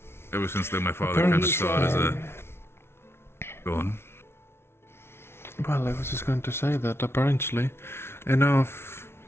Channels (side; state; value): right; late; 0.12 ms